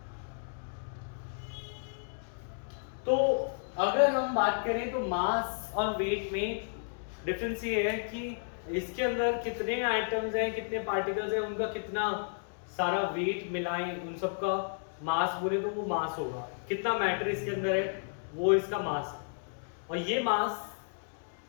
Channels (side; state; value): right; silent; digital silence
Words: तो अगर हम बात करें तो मास और वेट में डिफरेंस ये है कि इसके अंदर कितने एटम्स हैं, कितने पार्टिकल्स हैं, उनका कितना सारा वेट मिलाएं, उन सब का मास बोले तो वो मास होगा. कितना मैटर इसके अंदर है वो इसका मास है. और ये मास